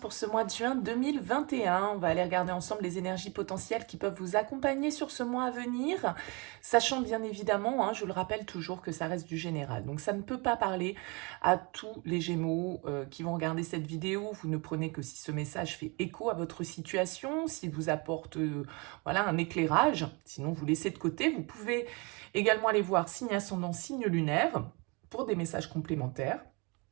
ce mois de juin 2021. On va aller regarder ensemble les énergies potentielles qui peuvent vous accompagner sur ce mois à venir, sachant bien évidemment, je le rappelle toujours, que ça reste du général. Donc ça ne peut pas parler à tous les Gémeaux qui vont regarder cette vidéo. Vous ne prenez que si ce message fait écho à votre situation, s'il vous apporte voilà, un éclairage. Sinon vous laissez de côté. Vous pouvez également aller voir signe ascendant, signe lunaire pour des messages complémentaires.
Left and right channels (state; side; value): quieter; left; 29.7 dB